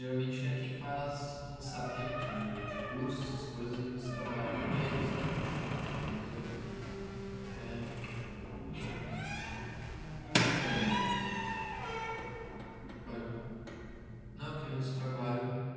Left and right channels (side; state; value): both; identical; correlation 1.00